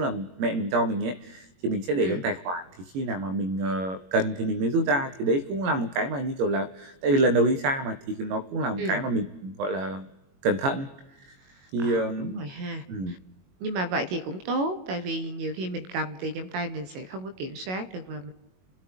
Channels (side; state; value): left; late; 22 ms